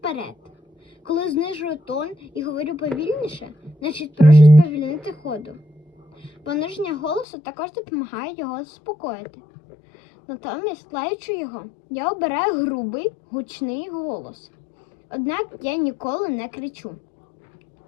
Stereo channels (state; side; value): drops out; right; at 7.2 s